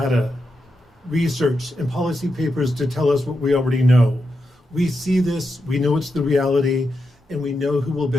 research, and policy papers to tell us what we already know. We see this, we know it's the reality, and we know who will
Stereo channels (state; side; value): normal; both; correlation 0.86